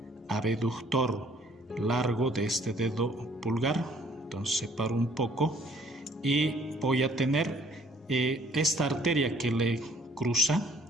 abductor largo de este dedo pulgar. Entonces separo un poco y voy a tener esta arteria que le cruza,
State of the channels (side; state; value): both; normal; correlation 0.60